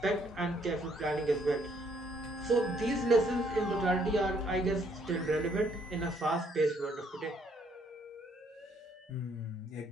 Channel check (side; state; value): both; normal; correlation 0.68